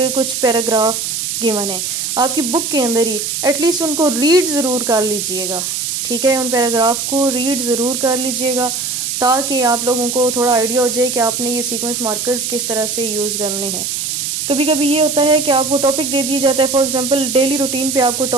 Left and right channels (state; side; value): noise; right; hiss, 2 dB below the sound